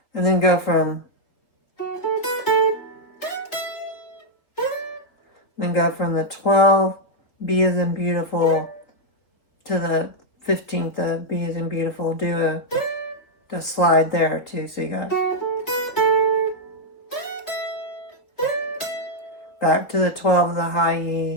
and then go from the 12, B is in beautiful, to the 15th of B is in beautiful. Do a slide there too. So you got back to the 12 of the high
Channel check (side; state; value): right; late; 4.0 ms